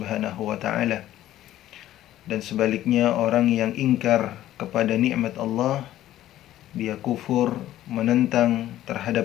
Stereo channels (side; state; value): right; quieter; 13.5 dB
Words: wa Ta'ala. Dan sebaliknya, orang yang ingkar kepada nikmat Allah, dia kufur, menentang